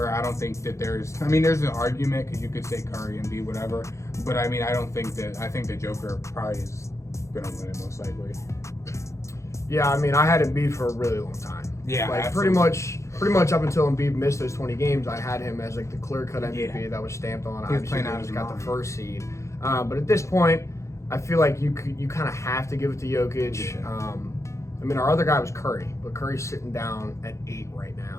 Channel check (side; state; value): right; late; 0.14 ms